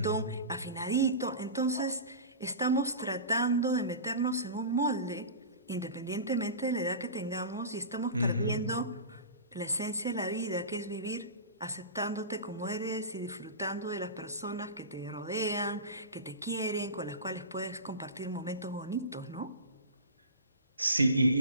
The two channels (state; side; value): inverted; both; correlation -0.31